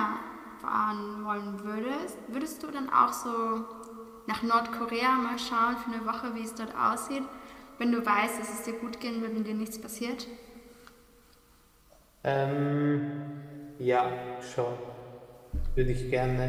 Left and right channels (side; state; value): both; identical; correlation 1.00